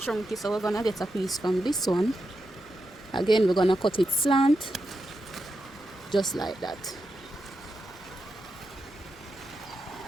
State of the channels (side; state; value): both; normal; correlation 0.87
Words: so we're gonna get a piece from this one. Again, we're gonna cut it slant, just like that.